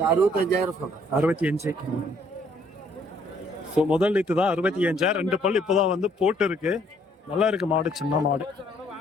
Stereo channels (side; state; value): both; normal; correlation 0.65